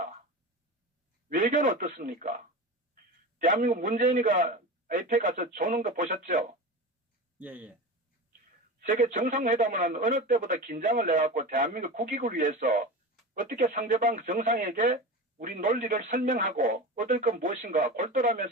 외교는 어떻습니까? 대한민국 문재인이가 APEC 가서 조는 거 보셨죠? 예. 세계 정상회담은 어느 때보다 긴장을 내갖고 대한민국 국익을 위해서 어떻게 상대방 정상에게 우리 논리를 설명하고 얻을 건 무엇인가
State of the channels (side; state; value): both; normal; correlation 0.28